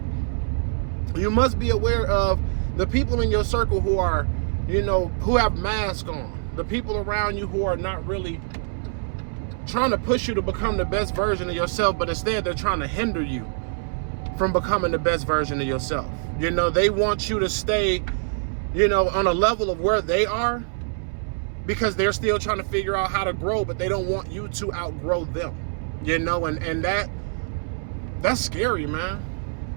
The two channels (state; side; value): silent; left; 62 dB below the other